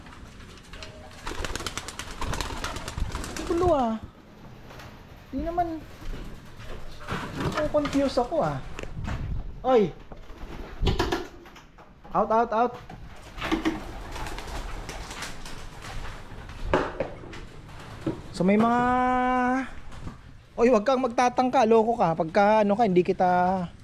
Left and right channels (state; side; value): identical; both; correlation 1.00